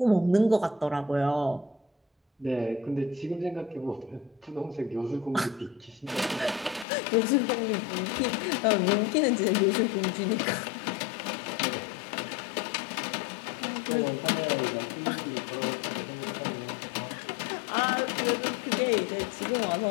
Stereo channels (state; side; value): drops out; right; at 6.9 s